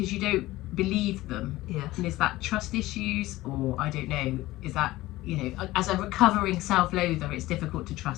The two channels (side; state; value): right; quieter; 17.7 dB